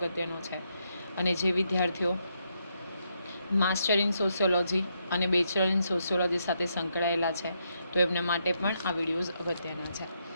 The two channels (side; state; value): both; inverted; correlation -0.79